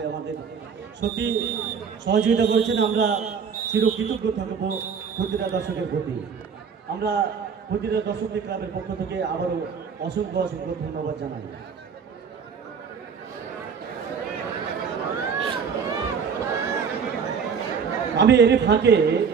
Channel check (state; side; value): quieter; left; 6.4 dB